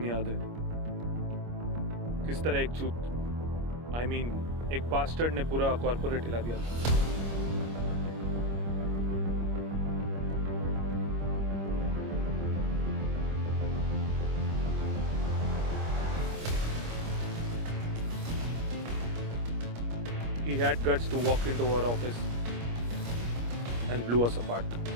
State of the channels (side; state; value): left; late; 25 ms